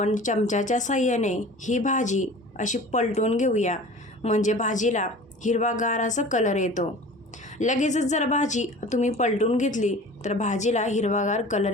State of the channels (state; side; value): normal; both; correlation 0.41